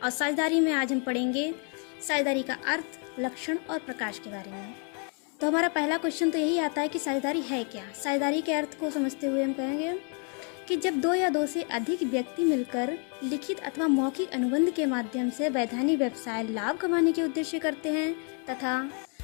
और साझेदारी में आज हम पढ़ेंगे साझेदारी का अर्थ, लक्षण और प्रकाश के बारे में। तो हमारा पहला क्वेश्चन तो यही आता है कि साझेदारी है क्या। साझेदारी के अर्थ को समझते हुए हम कहेंगे कि जब 2 या 2 से अधिक व्यक्ति मिलकर लिखित अथवा मौखिक अनुबंध के माध्यम से वैधानिक व्यवसाय लाभ कमाने के उद्देश्य करते हैं तथा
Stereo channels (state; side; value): quieter; right; 39.6 dB